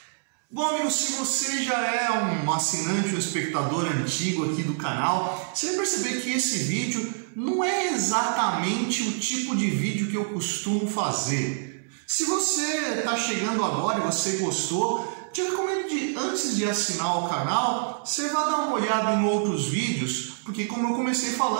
Bom, amigo, se você já é um assinante ou espectador antigo aqui do canal, você vai perceber que esse vídeo não é exatamente o tipo de vídeo que eu costumo fazer. Se você está chegando agora e você gostou, te recomendo antes de assinar o canal, você vai dar uma olhada em outros vídeos, porque como eu comecei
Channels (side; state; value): left; silent; 61 dB below the other